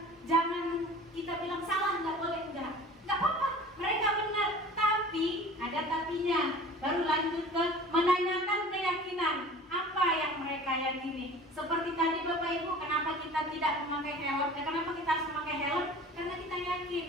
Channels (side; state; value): both; normal; correlation 0.43